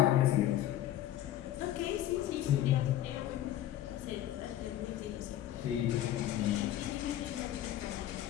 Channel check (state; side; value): quieter; right; 12.7 dB